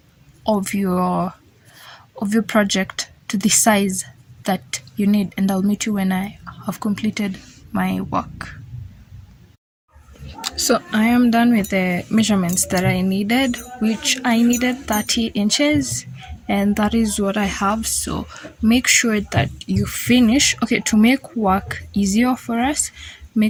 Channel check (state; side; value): identical; both; correlation 1.00